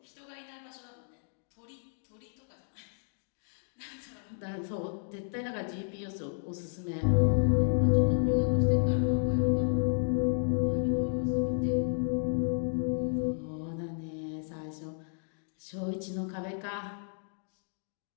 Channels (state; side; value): silent; right; digital silence